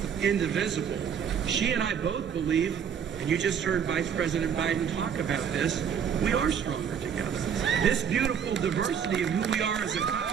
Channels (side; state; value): left; quieter; 7.8 dB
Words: indivisible. She and I both believe, and you just heard Vice President Biden talk about this, we are stronger together. This beautiful diversity of who we are as a